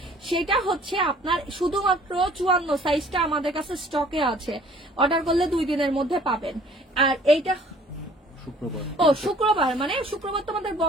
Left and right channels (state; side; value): normal; both; correlation 0.54